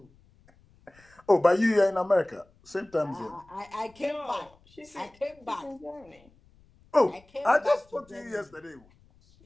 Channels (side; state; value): left; noise; rumble, 30 dB below the sound